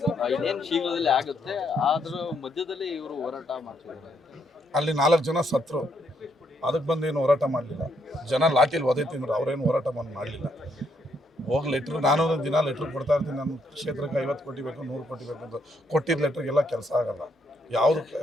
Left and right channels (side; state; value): both; normal; correlation 0.74